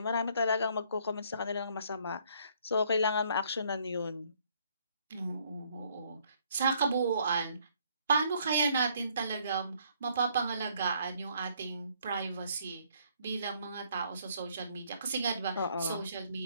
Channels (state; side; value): inverted; both; correlation -0.66